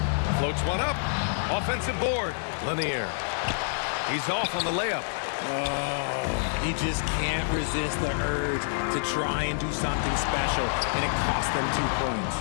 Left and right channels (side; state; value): right; silent; digital silence